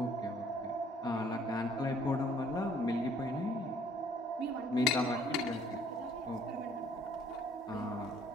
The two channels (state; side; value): normal; both; correlation 0.60